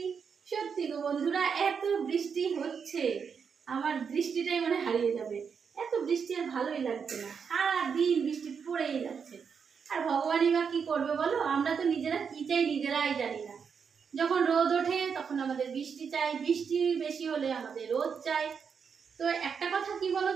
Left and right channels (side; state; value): left; quieter; 6.4 dB